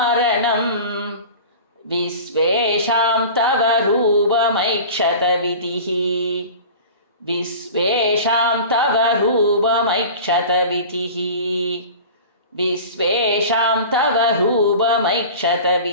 विश्वेषां तव रूपमैक्षतविधिः विश्वेषां तव रूपमैक्षतविधिः विश्वेषां तव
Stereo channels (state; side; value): inverted; both; correlation -0.37